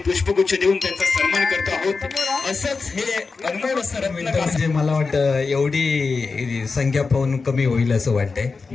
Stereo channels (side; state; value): right; quieter; 4.4 dB